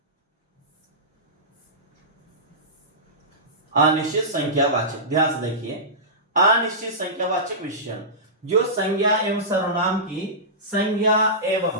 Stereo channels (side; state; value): both; normal; correlation -0.18